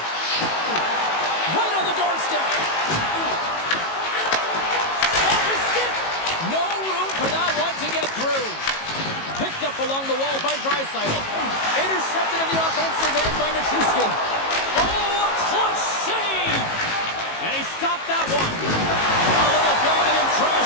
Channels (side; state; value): right; late; 18 ms